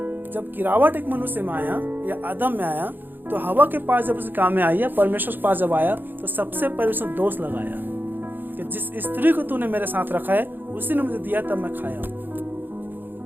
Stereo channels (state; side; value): late; left; 0.092 ms